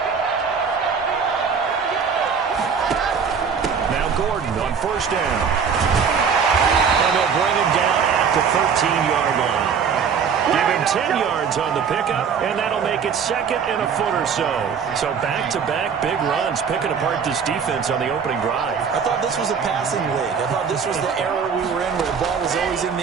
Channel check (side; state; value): left; quieter; 6.5 dB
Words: First down. And they'll bring him down at the 13-yard line. Give him 10 yards on the pickup, and that'll make it second and a foot or so. So back-to-back big runs, picking apart this defense on the opening drive. I thought this was a passing league. I thought this was the era we were in where the ball was always in